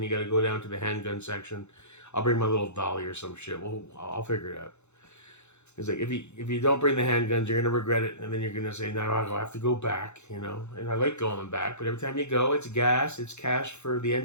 you got to go down to the handgun section. I'll bring my little dolly or some shit. I'll figure it out. It's like, if you don't bring the handguns, you're going to regret it. And then you're going to say, no, I'll have to go back, you know. And I like going back. But every time you go, it's gas. It's cash for the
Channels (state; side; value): late; right; 0.82 ms